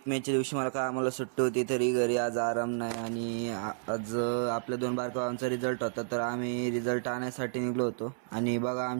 मेच्या दिवशी मला काय आम्हाला सुट्टी होती, तरी घरी आज आराम नाही. आणि आज आपल्या 2 बारकावांचा रिझल्ट होता, तर आम्ही रिझल्ट आणण्यासाठी निघलो होतो. आणि बघा,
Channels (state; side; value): silent; left; 57 dB below the other